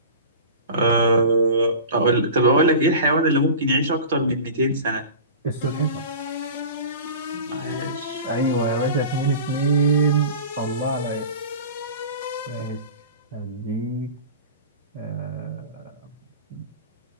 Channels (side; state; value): both; inverted; correlation -0.35